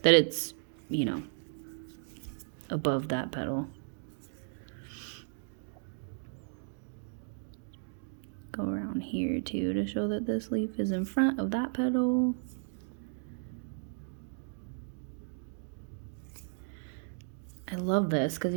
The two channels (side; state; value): left; silent; digital silence